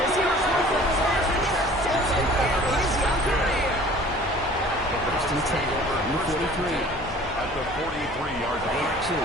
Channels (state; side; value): normal; both; correlation 0.48